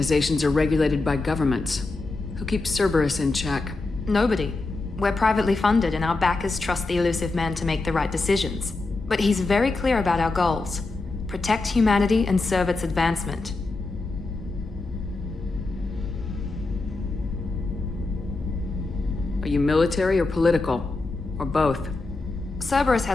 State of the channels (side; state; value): right; quieter; 3.4 dB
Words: are regulated by governments. Who keeps Cerberus in check? Nobody. We're privately funded and our backers trust the elusive man to make the right decisions. But he's very clear about our goals. Protect humanity and serve its advancement. Are you military or political? Or both? Cerberus